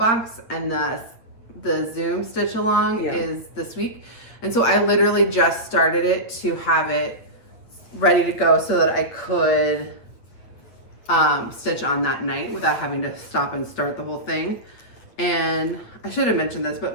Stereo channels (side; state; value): right; late; 8.7 ms